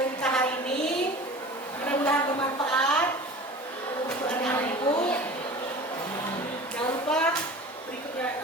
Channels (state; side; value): normal; both; correlation 0.38